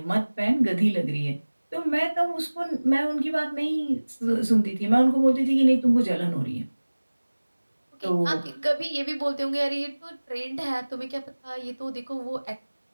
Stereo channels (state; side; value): inverted; both; correlation -1.00